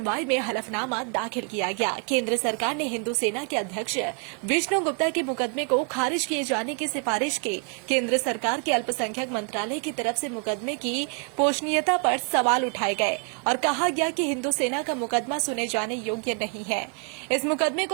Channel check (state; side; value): quieter; left; 39.5 dB